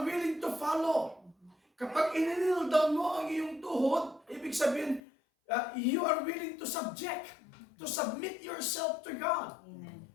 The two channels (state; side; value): drops out; right; at 5.0 s